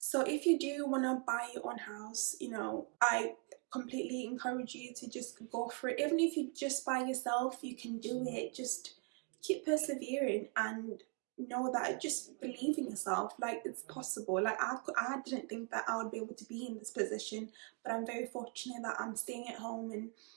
if you do want to buy your own house, you know, I completely encourage you to just go for it. Even if you're just by yourself, you can do it. Just keep persevering and know that, just believe in yourself. Like, it's possible. Like, I didn't think that I would be able to be in this position, but I'm very fortunate that I'm staying at home and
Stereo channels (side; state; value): left; quieter; 33.2 dB